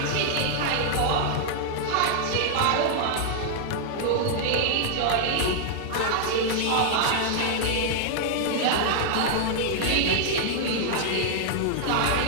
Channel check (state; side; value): different; both; correlation -0.01